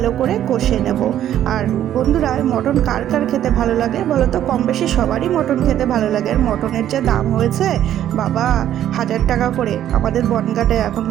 করে কষে নেব। আর বন্ধুরা, মটন কার কার খেতে ভালো লাগে বলো তো? কম বেশি সবারই মটন খেতে ভালো লাগে। আর মটনের যে দাম হয়েছে বাবা, 1000 টাকা করে আমাদের বনগাঁটে এখন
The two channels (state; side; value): quieter; left; 11.4 dB